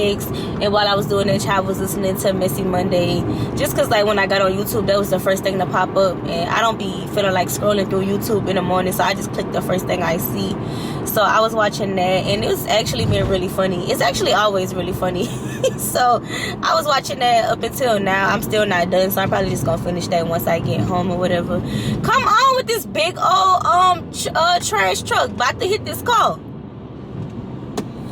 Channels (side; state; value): both; identical; correlation 1.00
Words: And while I was doing that, I was listening to Messy Monday, just because like when I got on YouTube, that was the first thing to pop up, and I don't be feeling like scrolling through YouTube in the morning, so I just click the first thing I see. So I was watching that, and it's actually been really funny. It's actually always really funny. So I was watching that up until now. I'm still not done, so I'm probably just gonna finish that once I get home or whatever. Come on with this big old trash truck about to hit this car.